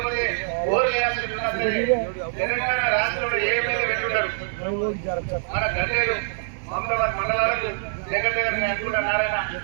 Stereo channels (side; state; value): left; silent; digital silence